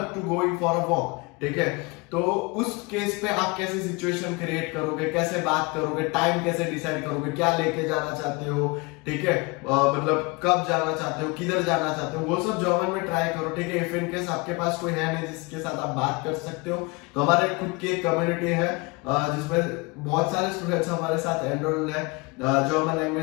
to going for a walk, ठीक है, तो उस केस पे आप कैसे सिचुएशन क्रिएट करोगे, कैसे बात करोगे, टाइम कैसे डिसाइड करोगे, क्या लेके जाना चाहते हो, ठीक है, मतलब कब जाना चाहते हो, किधर जाना चाहते हो, वो सब जर्मन में ट्राई करो, ठीक है। इफ इन केस आपके पास कोई है नहीं जिसके साथ आप बात कर सकते हो, तो हमारे खुद की एक कम्युनिटी है जिसमें बहुत सारे स्टूडेंट्स हमारे साथ एनरोल्ड है जर्मन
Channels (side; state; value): right; quieter; 27.1 dB